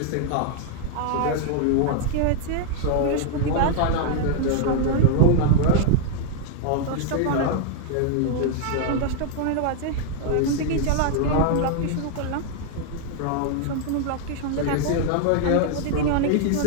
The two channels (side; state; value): both; different; correlation 0.00